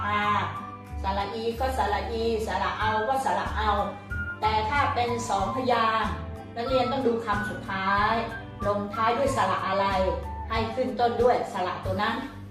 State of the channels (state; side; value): identical; both; correlation 1.00